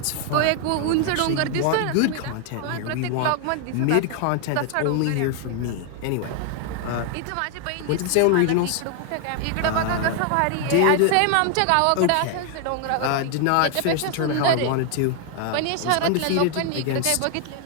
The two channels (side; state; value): both; different; correlation 0.00